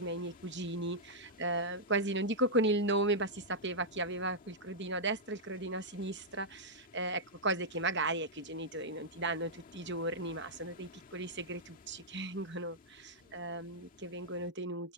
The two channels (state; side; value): normal; both; correlation -0.08